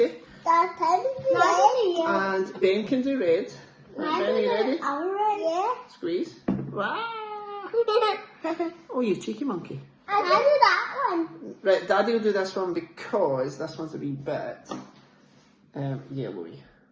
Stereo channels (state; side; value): identical; both; correlation 1.00